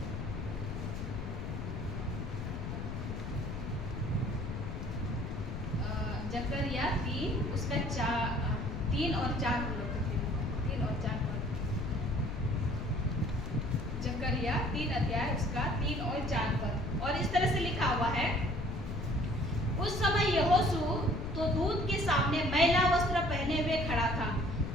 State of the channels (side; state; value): left; noise; rumble, 5 dB below the sound